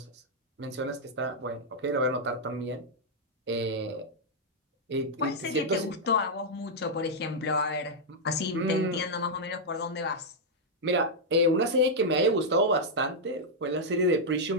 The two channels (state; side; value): normal; both; correlation -0.05